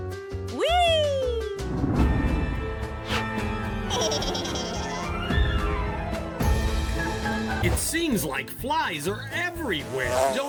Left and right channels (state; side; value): identical; both; correlation 1.00